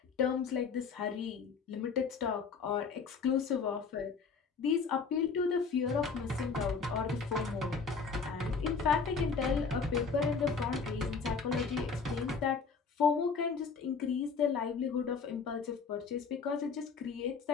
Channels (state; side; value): quieter; right; 5.2 dB